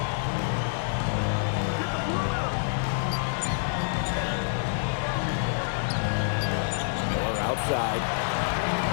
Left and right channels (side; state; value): right; silent; digital silence